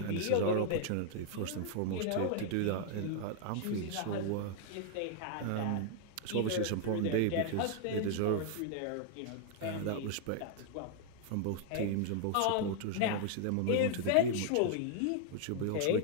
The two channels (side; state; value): both; different; correlation 0.00